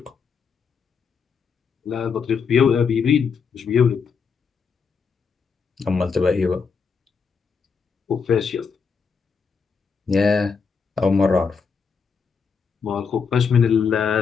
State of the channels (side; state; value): right; quieter; 5.7 dB